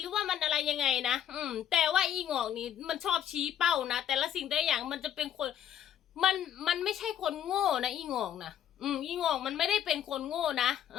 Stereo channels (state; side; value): quieter; right; 10.2 dB